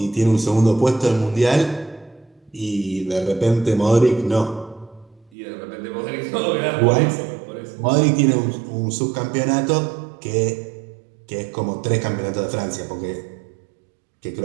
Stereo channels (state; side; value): drops out; left; at 5.3 s